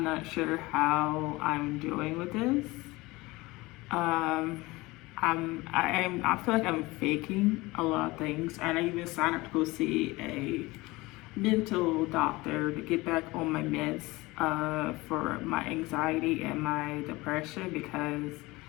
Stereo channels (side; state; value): right; quieter; 21.5 dB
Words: not sure how I'm doing with this. Um, I feel like I'm faking a lot of things, and I even signed up to go see a mental doctor to get back on my meds for my anxiety and my depression because